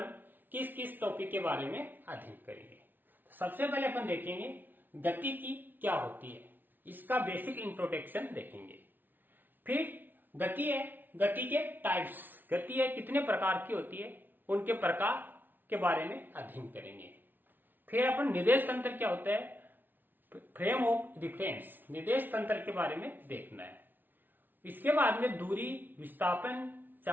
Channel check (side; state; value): left; late; 0.090 ms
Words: किस किस टॉपिक के बारे में अध्ययन करेंगे। तो सबसे पहले अपन देखेंगे गति की क्या होती है, इसका बेसिक इंट्रोडक्शन देखेंगे। फिर गति है, गति के टाइप्स, गति है कितने प्रकार की होती है उनके प्रकार के बारे में अध्ययन करेंगे। फिर अपन निर्देश तंत्र क्या होता है, फ्रेम ऑफ रिफरेंस, निर्देश तंत्र के बारे में देखना है। इसके बाद में दूरी, विस्थापन,